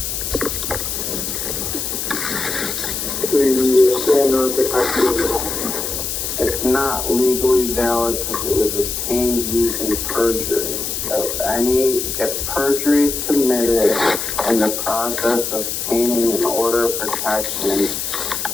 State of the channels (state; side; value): noise; left; hiss, 3 dB below the sound